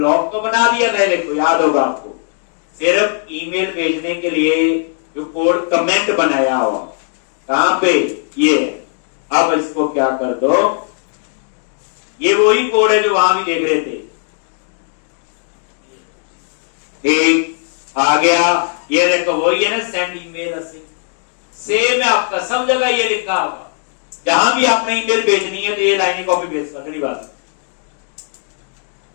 तो बना दिया था, देखो याद होगा आपको। सिर्फ ईमेल भेजने के लिए जो कोड कमेंट बनाया हुआ, कहां पे? ये। अब इसको क्या कर दो, ये वही कोड है जो वहां भी देख रहे थे। ठीक, आ गया। ये देखो वही है ना, सेंड ईमेल सेम है आपका, सब जगह ये लिखा होगा। जहां भी आपने ईमेल भेजनी है तो ये लाइनें कॉपी पेस्ट कर देनी, बस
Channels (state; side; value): silent; right; digital silence